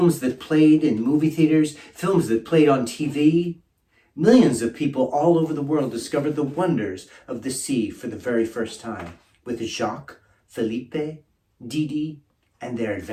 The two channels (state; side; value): identical; both; correlation 1.00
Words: that played in movie theaters, films that played on TV. Millions of people all over the world discovered the wonders of the sea for the very first time, with Jacques, Felipe, Didi, and their